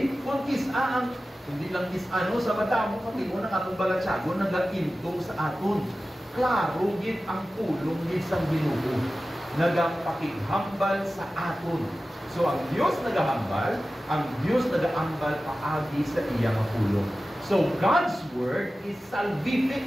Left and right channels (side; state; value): both; normal; correlation 0.95